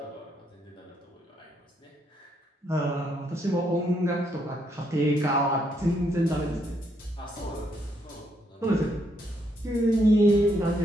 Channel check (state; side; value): normal; both; correlation 0.74